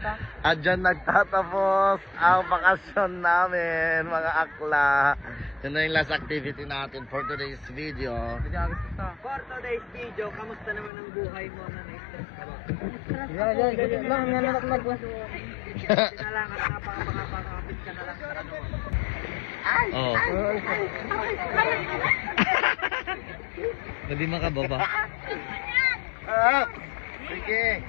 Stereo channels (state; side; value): drops out; right; at 10.9 s